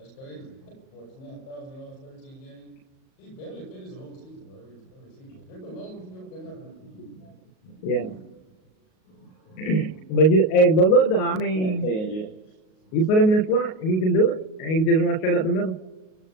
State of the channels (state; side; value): late; right; 38 ms